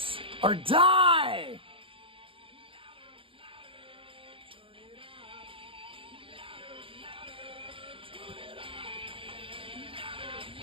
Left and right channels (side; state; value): left; late; 0.26 ms